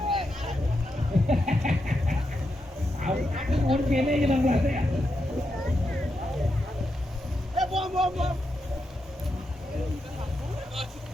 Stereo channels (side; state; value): both; normal; correlation 0.85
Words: Mungkin ini yang plastik ya.